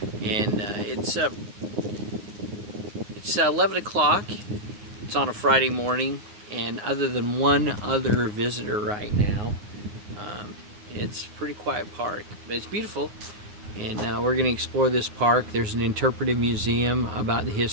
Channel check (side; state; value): left; late; 9.6 ms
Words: And it's 11 o'clock, it's on a Friday morning, and other than one other visitor right now, it's a pretty quiet park, but it's beautiful. And we're going to explore this park. There's an interpretive museum about the